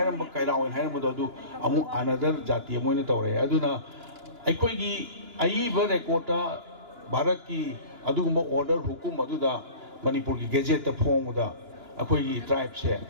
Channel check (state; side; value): late; left; 2.9 ms